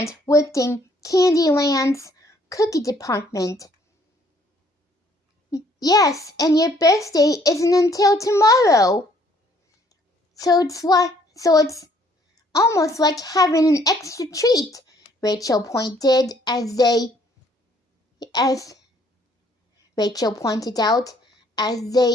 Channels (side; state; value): both; normal; correlation 0.63